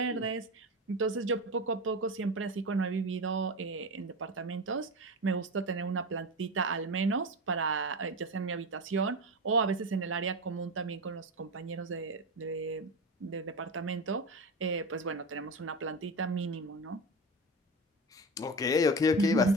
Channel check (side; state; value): both; normal; correlation 0.23